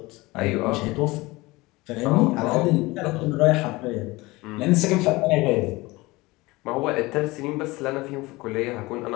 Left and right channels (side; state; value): right; quieter; 21.6 dB